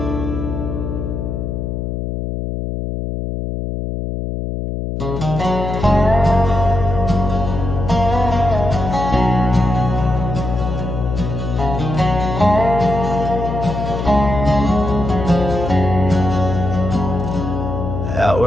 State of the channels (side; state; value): left; noise; hum, 4 dB below the sound